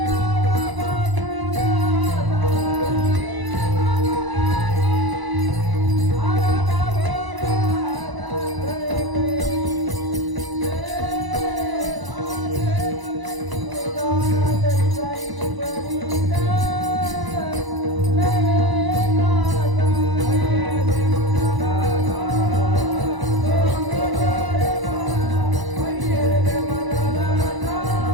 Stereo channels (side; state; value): left; late; 1.0 ms